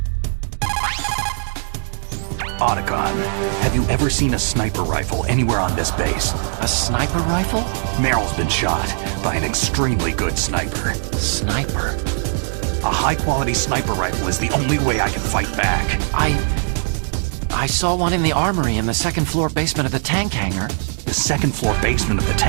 Otacon, have you ever seen a sniper rifle anywhere on this base? A sniper rifle? Meryl's been shot by an extremely good sniper. Sniper? A high-quality sniper rifle is the only way I can fight back. I saw one in the armory in the second-floor basement of the tank hangar. The second-floor basement of the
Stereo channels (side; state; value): left; silent; digital silence